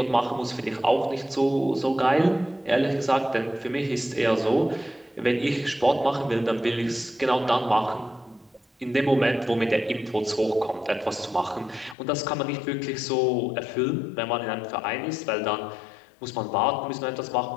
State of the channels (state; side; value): drops out; right; at 12.0 s